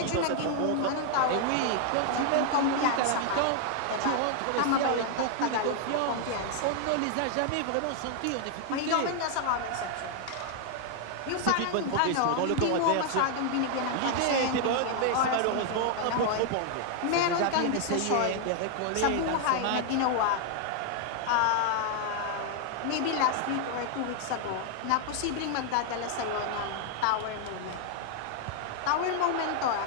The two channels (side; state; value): both; different; correlation 0.00